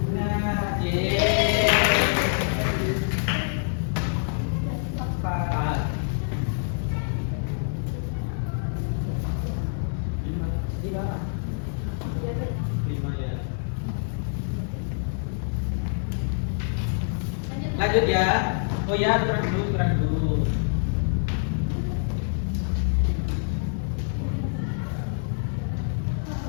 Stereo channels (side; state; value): right; silent; digital silence